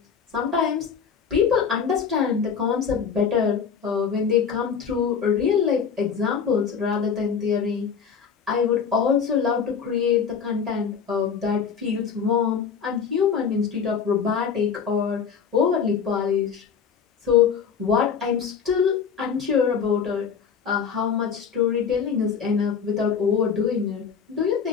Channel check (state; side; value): quieter; right; 6.6 dB